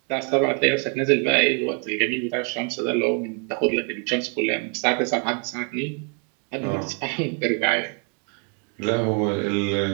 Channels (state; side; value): quieter; left; 39.6 dB